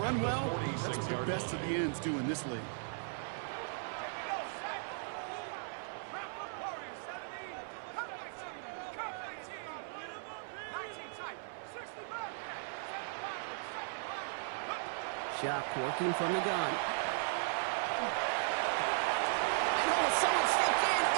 well, that's what the best of the ends do in this league. Shock working from the gun. And oh, someone stepped in.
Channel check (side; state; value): left; silent; 53 dB below the other